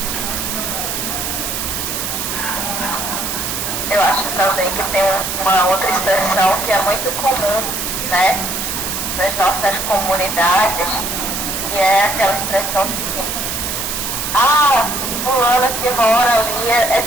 Eu acho também que tem uma outra expressão que é muito comum, né, nas nossas comunidades, que é aquela expressão assim: ah, fulana que mora ali é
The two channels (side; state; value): right; noise; hiss, 3 dB below the sound